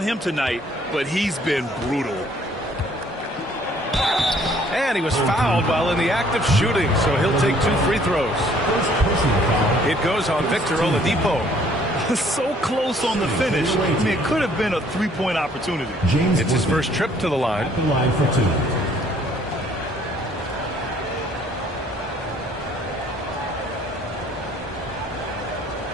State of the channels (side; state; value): both; normal; correlation 0.60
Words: tonight, but he's been brutal. And he was fouled while in the act of shooting, so he'll take 2 free throws. It goes on Victor Oladipo. So close on the finish. I mean, it could have been a 3-point opportunity. It's his first trip to the line. The line for 2.